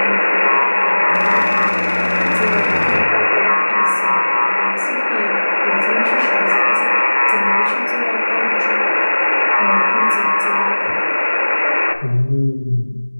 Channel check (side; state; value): both; inverted; correlation -1.00